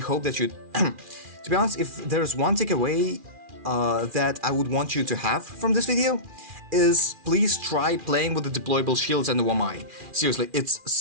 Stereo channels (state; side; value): late; left; 2.4 ms